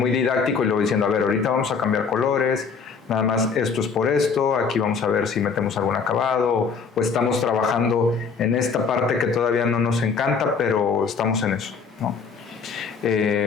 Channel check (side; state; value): right; quieter; 5.5 dB